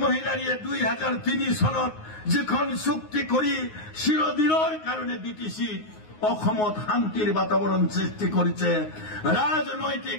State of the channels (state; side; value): late; right; 9.5 ms